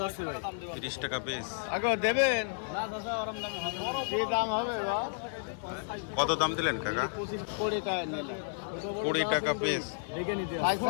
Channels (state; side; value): silent; right; 56 dB below the other